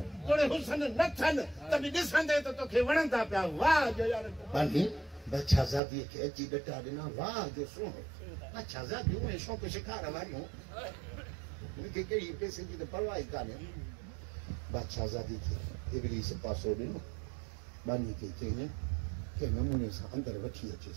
तोड़े हुसन न थियनि त बि ॾिसंदे त तोखे वणंदा पिया वाह जो यार बादशाहज़ादी खे अची ॾटा ॾिना वाह जो सुहिणो बादशाहज़ादियूं ऐं शौक़ शिकार वारियूं मूंखे कहिड़ी पैसे जी त परवाह ई कान्हे बादशाहज़ादी खे इब्लीस पासो ॾिनो बानी खे चई कंहिं नमूने सां अंदरि वठी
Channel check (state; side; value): drops out; left; at 5.8 s